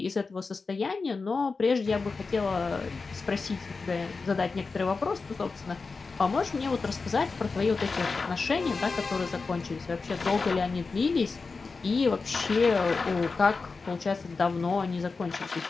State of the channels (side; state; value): right; quieter; 4.3 dB